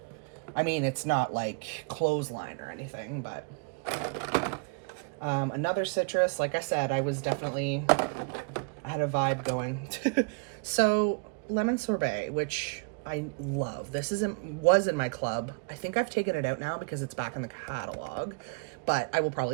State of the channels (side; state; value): left; quieter; 35.2 dB